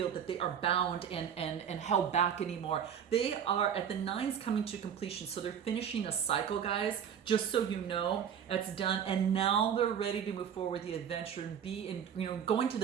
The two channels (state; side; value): quieter; left; 8.3 dB